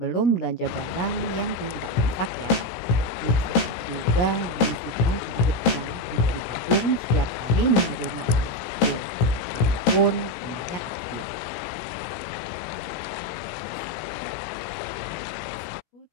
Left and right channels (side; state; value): right; late; 17 ms